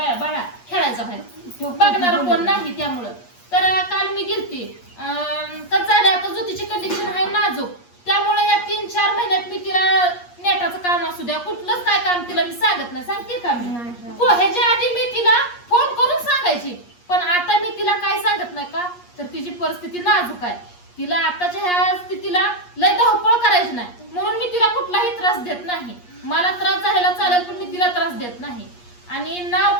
बाळा खेळायचा बाहेर बघणार कोण नाही त्यामुळं. तर काल मी गेलते तर झाले आता ज्योतीची कंडिशन आहे नाजूक त्यामुळे या 3-4 महिन्यात मी तिला नेटाचं काम असू द्या कुठलंच काय काम तिला मी सांगत नाही. सांगते का मी ह्याच्या आधी मी तिला फोन करून सांगायची पण आता मी तिला काय सांगत नाही का तर तिची परिस्थिती नाजूक आहे. तिला आताच्या ह्या स्थितीला लय धावपळ करायची नाही म्हणून मी तिला कुठलाही त्रास देत नाही. मला त्रास झालेला चालेल पण मी तिला त्रास देत नाही. आणि नाव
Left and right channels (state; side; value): late; right; 8.4 ms